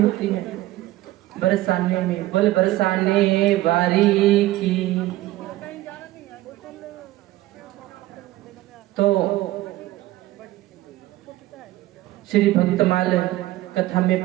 होती है? बरसाने में। बोल बरसाने वारी की। तो श्री भक्तमाल कथा में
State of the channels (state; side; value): quieter; left; 16.4 dB